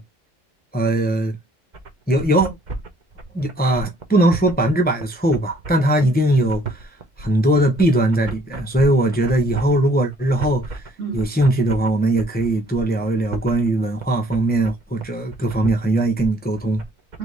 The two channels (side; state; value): both; normal; correlation 0.61